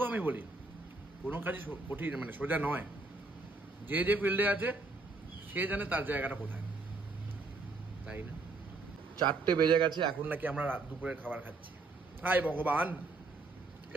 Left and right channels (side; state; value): left; quieter; 3.4 dB